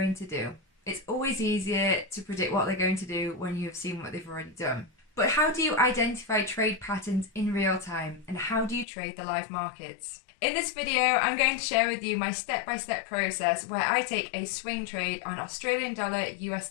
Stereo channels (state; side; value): drops out; right; at 8.8 s